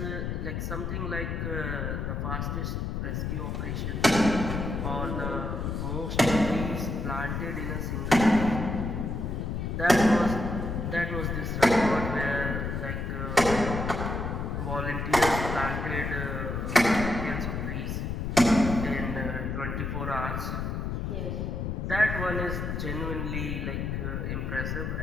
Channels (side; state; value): left; noise; rumble, 2 dB below the sound